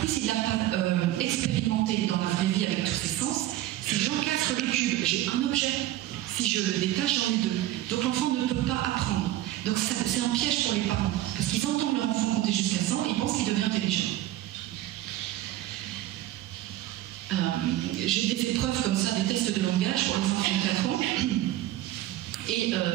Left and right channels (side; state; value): left; quieter; 14.6 dB